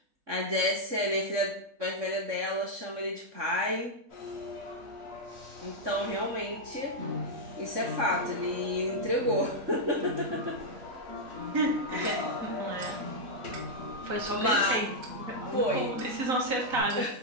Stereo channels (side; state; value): left; late; 3.6 ms